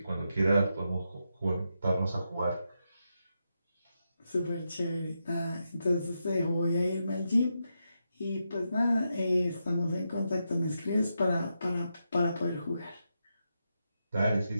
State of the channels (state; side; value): inverted; both; correlation -0.85